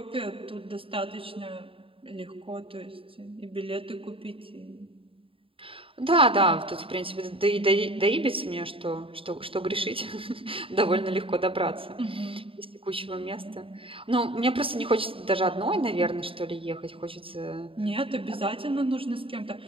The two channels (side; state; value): left; late; 0.26 ms